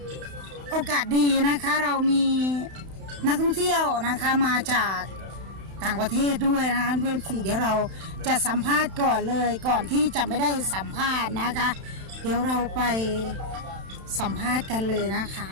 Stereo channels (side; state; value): left; late; 31 ms